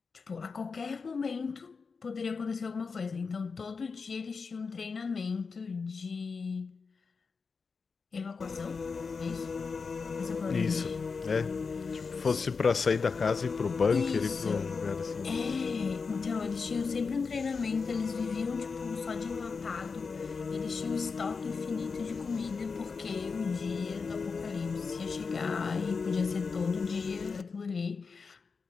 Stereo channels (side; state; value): right; quieter; 5.0 dB